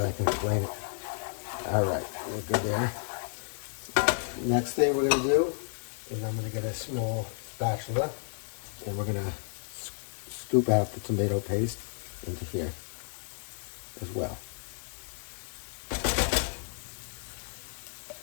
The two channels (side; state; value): right; silent; 57 dB below the other